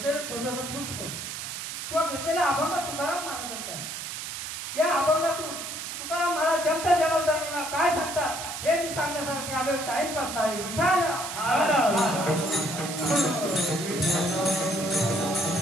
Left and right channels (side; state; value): right; noise; hiss, 6 dB below the sound